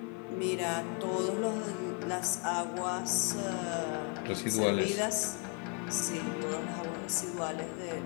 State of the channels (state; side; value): quieter; right; 34.0 dB